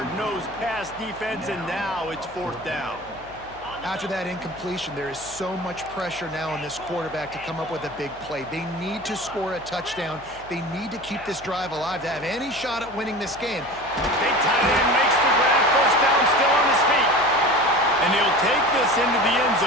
pass defense, and now it's 4th down. After that incompletion, there is so much pressure now on this quarterback to come up with a big play. They need to score a touchdown. They need to keep this drive alive to have any shot at winning this game. Big tight end makes the grab, first down, still on his feet. And he'll take this into the end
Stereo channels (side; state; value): left; noise; hum, 22 dB below the sound